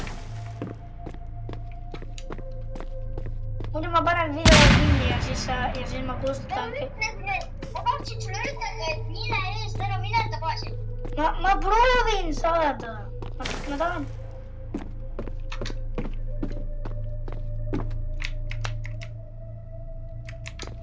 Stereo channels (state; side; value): identical; both; correlation 1.00